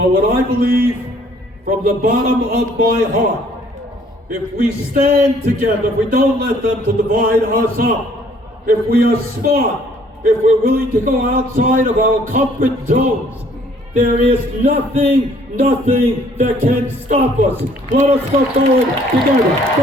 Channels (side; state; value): both; normal; correlation 0.60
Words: what I believe from the bottom of my heart, if we stand together, if we don't let them to divide us up, if we are smart, if we're willing to go outside of our comfort zones, there is nothing that can stop us. Let us go forward together.